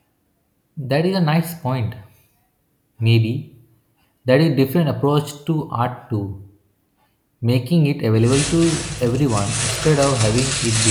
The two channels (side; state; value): both; identical; correlation 1.00